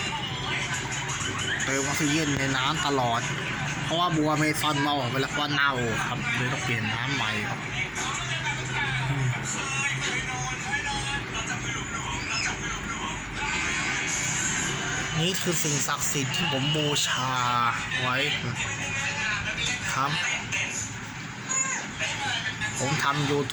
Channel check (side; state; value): both; identical; correlation 1.00